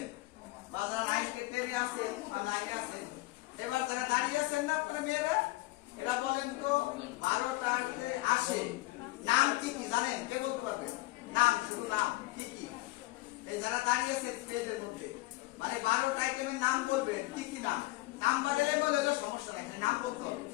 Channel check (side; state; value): right; quieter; 20.2 dB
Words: বা যারা 9-10-এ আছে বা 9-এ আছে, এবার যারা দাঁড়িয়ে আছেন না আপনারা মেয়েরা, এরা বলেন তো 12টাতে আসে নাম কি কি জানেন? কে বলতে পারবে? নাম, শুধু নাম কি কি? এই যারা দাঁড়িয়ে আছে স্টেজের মধ্যে, মানে 12টা আইটেমের নাম বলবেন কি কি নাম? নাম্বার এলে বলে সমস্যা নাই, নাম বলতে হবে।